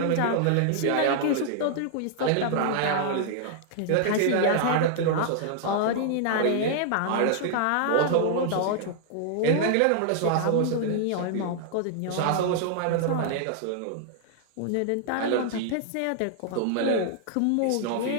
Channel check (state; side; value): different; both; correlation -0.01